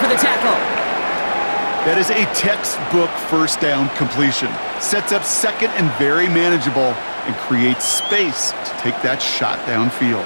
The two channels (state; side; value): inverted; both; correlation -1.00